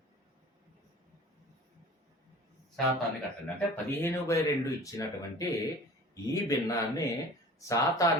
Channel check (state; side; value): normal; both; correlation 0.42